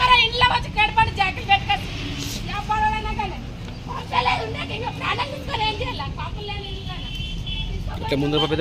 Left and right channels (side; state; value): both; identical; correlation 1.00